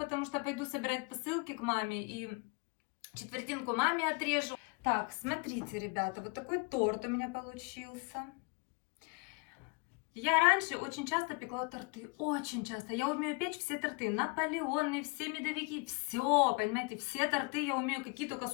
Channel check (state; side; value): quieter; right; 31.7 dB